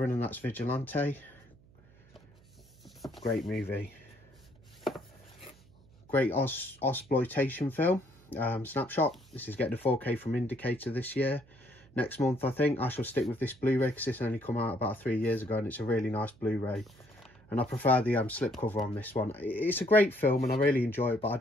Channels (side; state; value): right; noise; hum, 27 dB below the sound